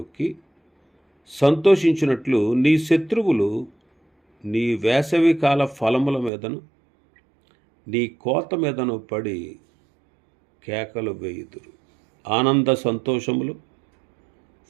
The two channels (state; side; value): drops out; left; at 6.3 s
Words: సంతోషించినట్లు నీ శత్రువులు నీ వేసవికాల ఫలముల మీదను నీ కోత మీదను పడి కేకలు వేయుదురు. ఆనంద సంతోషములు